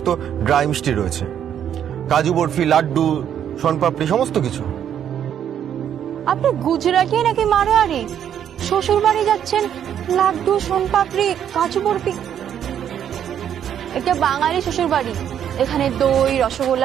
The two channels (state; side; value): quieter; left; 9.4 dB